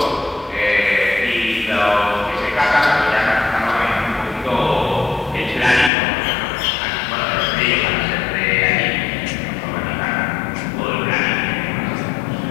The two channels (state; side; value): drops out; right; at 5.9 s